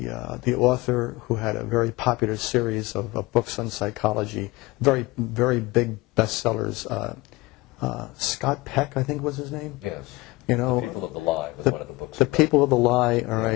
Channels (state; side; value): quieter; right; 21.7 dB